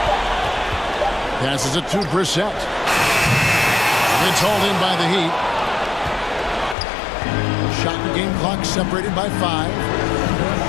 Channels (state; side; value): drops out; right; at 6.8 s